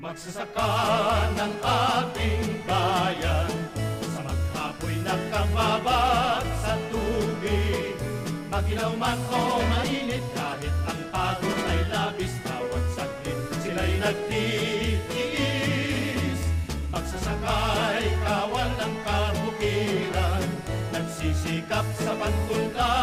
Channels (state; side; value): identical; both; correlation 1.00